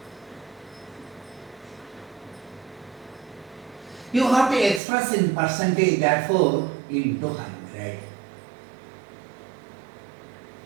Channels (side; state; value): left; drops out; at 4.8 s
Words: You have to express in percentage, therefore into 100.